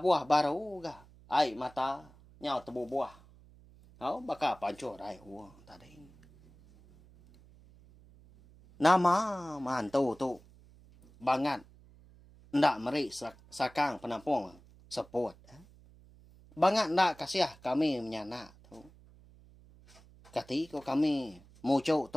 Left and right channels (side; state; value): right; noise; hum, 25 dB below the sound